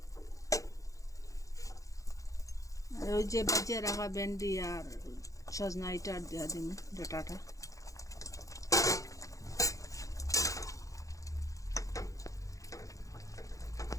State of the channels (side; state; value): right; late; 0.16 ms